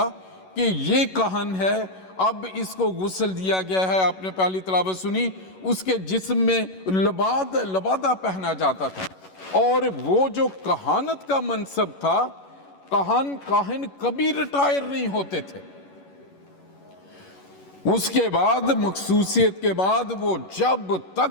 कि ये कहन है, अब इसको गुस्ल दिया गया है। आपने पहली तिलावत सुनी, उसके जिस्म में लबादा पहना जाता था। और वो जो कहानत का मनसब था, काहिन कभी रिटायर नहीं होते थे। उसके बाद मखसूसियत के बाद वो जब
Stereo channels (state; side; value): late; right; 11 ms